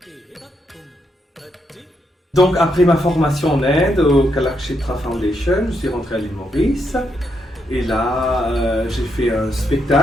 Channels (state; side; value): normal; both; correlation 0.79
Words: Donc après ma formation en Inde au Kalakshetra Foundation, je suis rentré à l'île Maurice et là j'ai fait un